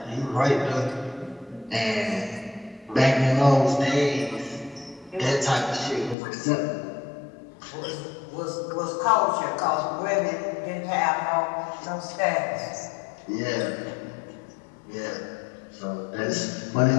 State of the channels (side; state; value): right; drops out; at 6.2 s